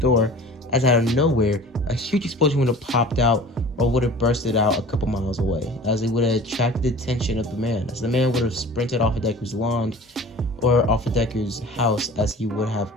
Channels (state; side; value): normal; both; correlation 0.42